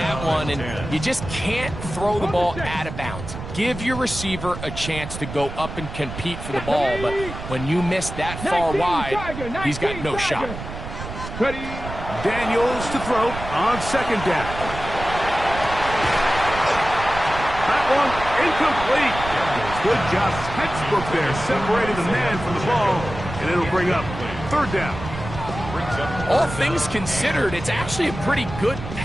one, and you just can't throw the ball out of bounds. give your receiver a chance to go up and compete for the ball, but when you miss that far wide, he's got no shot. Ready. Daniels to throw on second down. That one incomplete. Good job, textbook there, separating the man from the ball, and it'll bring up third down. All things considered, it's actually a pretty good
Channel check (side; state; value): right; noise; rumble, 9 dB below the sound